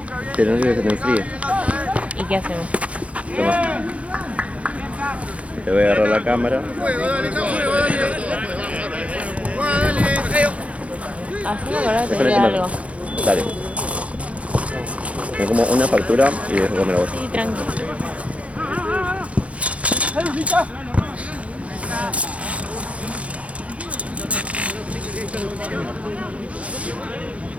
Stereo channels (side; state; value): left; late; 0.064 ms